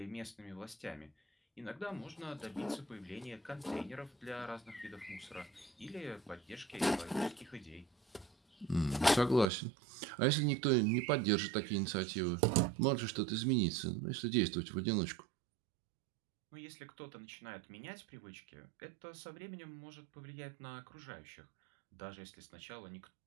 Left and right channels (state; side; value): drops out; left; at 9.5 s